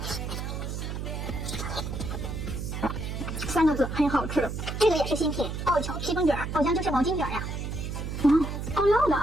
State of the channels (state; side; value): noise; right; hum, 5 dB below the sound